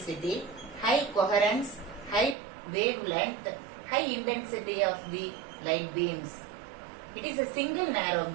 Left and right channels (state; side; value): drops out; left; at 2.4 s